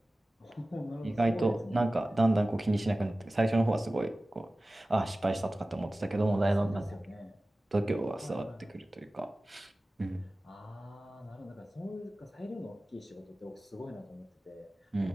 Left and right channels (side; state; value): both; normal; correlation 0.97